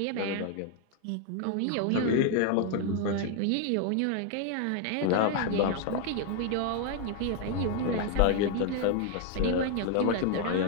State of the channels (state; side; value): different; both; correlation 0.00